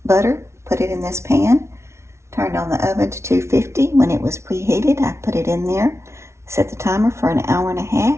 butter, put it in this pan, turned on the oven to 250. When it was preheated, I put it in there, set the timer for an hour and a half.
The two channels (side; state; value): left; late; 0.13 ms